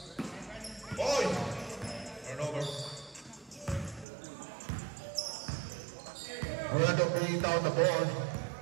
Oi! Turnover. Brenda bringing down the ball.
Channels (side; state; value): left; drops out; at 4.0 s